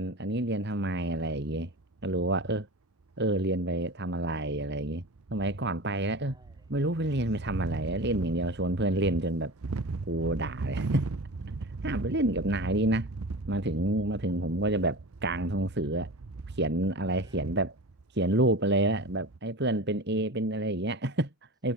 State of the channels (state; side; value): normal; both; correlation 0.32